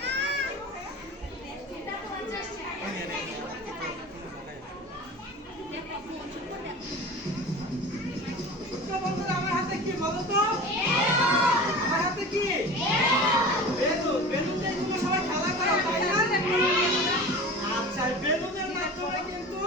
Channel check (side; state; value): both; normal; correlation 0.35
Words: বন্ধুরা আমার হাতে কি বলো তো? আমার হাতে কি? বেলুন। বেলুন দিয়ে তোমরা সবাই খেলা করো, তাই না? আচ্ছা, বেলুনের মাধ্যমে কিন্তু